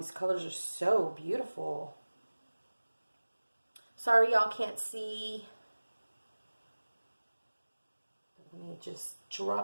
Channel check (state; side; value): inverted; both; correlation -1.00